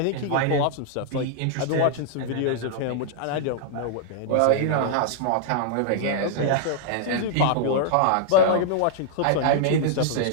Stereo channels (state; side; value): different; both; correlation -0.01